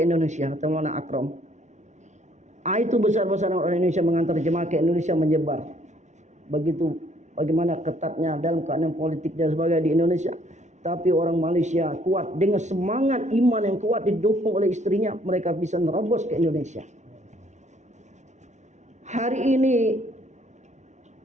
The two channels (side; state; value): left; late; 0.34 ms